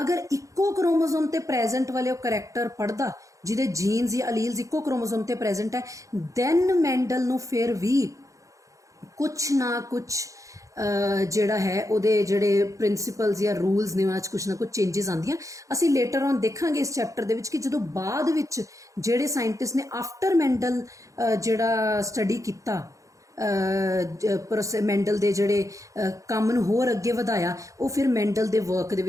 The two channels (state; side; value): late; left; 0.16 ms